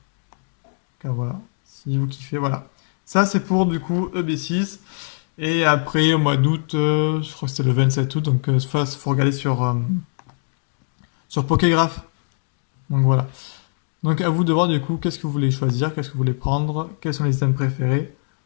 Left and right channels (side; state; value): right; silent; digital silence